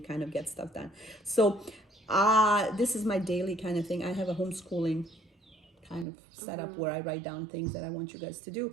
of get stuff done. So this is my daily kind of thing. I have a homeschooling kind of setup where I write down things that I want you guys to do.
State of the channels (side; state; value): left; drops out; at 6.1 s